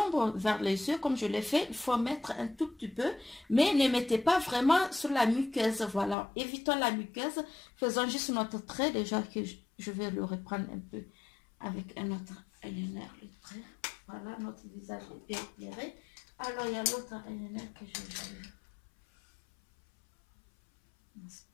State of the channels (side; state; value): right; drops out; at 6.2 s